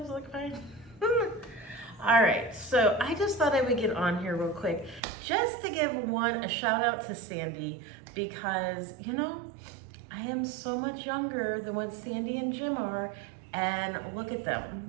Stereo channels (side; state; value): left; drops out; at 5.0 s